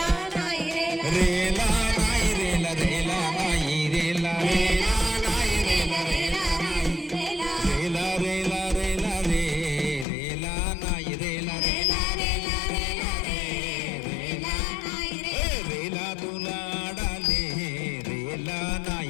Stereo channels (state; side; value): drops out; right; at 10.1 s